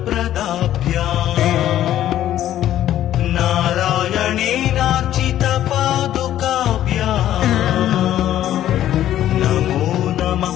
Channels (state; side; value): quieter; right; 12.2 dB